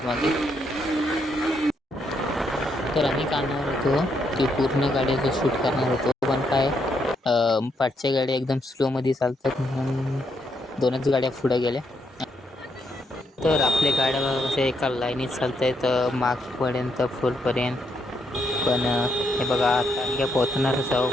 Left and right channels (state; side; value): normal; both; correlation 0.77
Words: तर आम्ही काढणार होतो ती पूर्ण गाड्याचं शूट करणार होतो, पण काय पाठच्या गाड्या एकदम स्लोमध्ये चालतात म्हणून 2च गाड्या पुढे गेल्या. तर आपल्या गाड्या कशा एका लाईनीत चालत आहेत मागपर्यंत फुलपर्यंत. पण हे बघा आता आम्ही काय पोहोचणारच आहो,